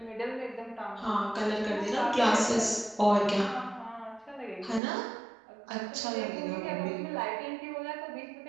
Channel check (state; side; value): drops out; left; at 4.8 s